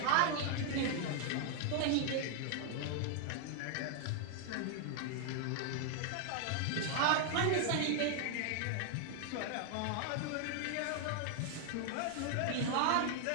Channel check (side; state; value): both; different; correlation 0.00